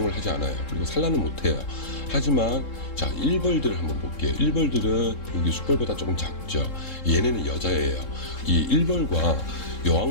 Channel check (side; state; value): right; late; 3.7 ms